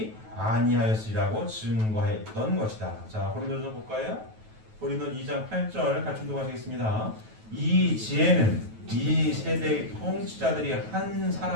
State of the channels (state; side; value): late; left; 9.2 ms